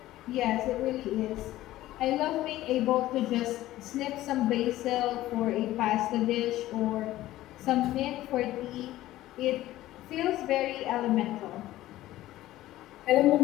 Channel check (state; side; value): quieter; right; 15.3 dB